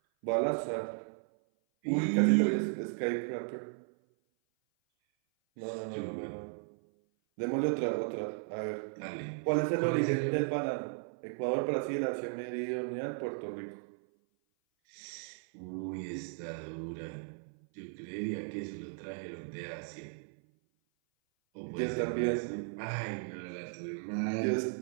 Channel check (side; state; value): left; silent; 54 dB below the other